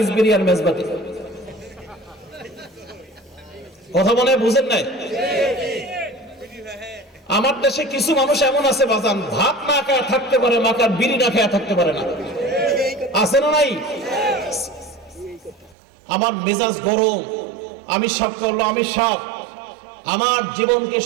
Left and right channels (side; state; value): left; drops out; at 15.8 s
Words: বিরিয়ার মেজবাতি। কথা মনে বুঝেন নাই? আমার দেশে কিছু মানুষ এমন আছে বাজান, ভাত না খায় থাকতে পারে, মাকার বিড়ি না খায় থাকতে পারে না, আছে না নাই? আমার মেজাজ গরম, আমি সব করলো, আমি সব আমার জীবনকে